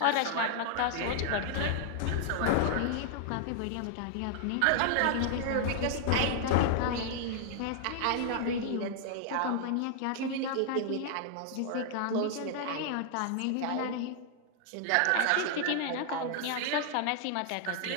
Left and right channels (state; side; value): different; both; correlation 0.00